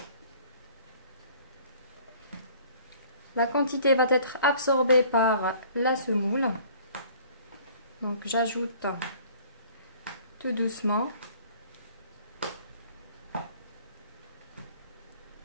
La quantité va être absorbée par la semoule. Donc j'ajoute tout doucement.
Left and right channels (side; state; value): both; inverted; correlation -0.53